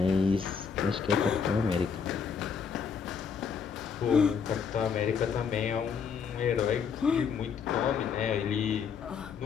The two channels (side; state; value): right; quieter; 6.4 dB